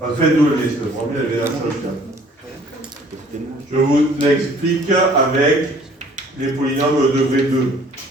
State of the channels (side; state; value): both; normal; correlation 0.55